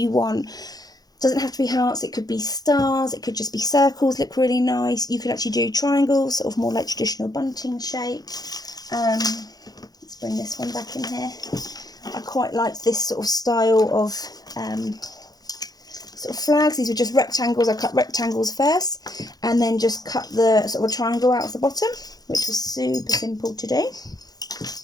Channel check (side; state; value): right; late; 0.19 ms